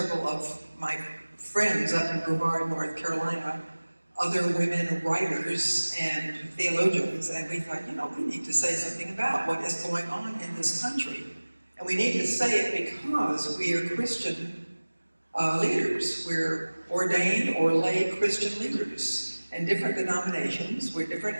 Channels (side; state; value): both; inverted; correlation -1.00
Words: of my friends up in Brevard, North Carolina, other women writers and theologians, and we thought, we need to say something about what is going on in this country. And we need to say it because we are Christian leaders. We're ordained or lay Christian leaders in different denominations. We're different